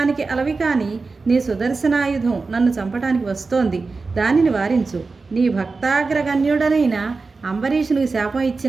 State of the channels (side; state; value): left; quieter; 4.1 dB